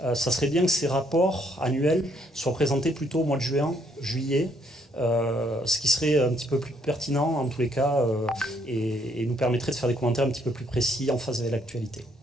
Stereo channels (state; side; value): normal; both; correlation 0.69